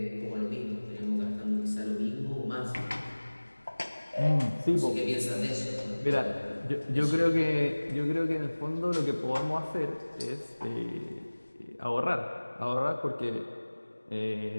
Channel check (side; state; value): both; inverted; correlation -1.00